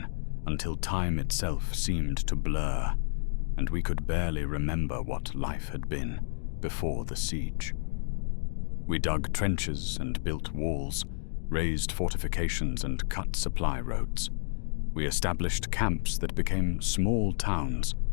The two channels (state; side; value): silent; right; digital silence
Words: until time itself seemed to blur, and we could barely remember what life had been before the siege. We dug trenches and built walls, raised fortifications and cut supply roads. We established camps that became small towns,